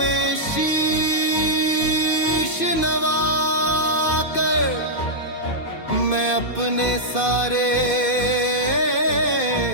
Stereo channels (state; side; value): late; right; 2.5 ms